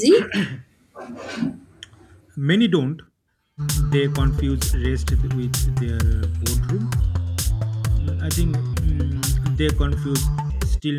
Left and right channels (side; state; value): both; identical; correlation 1.00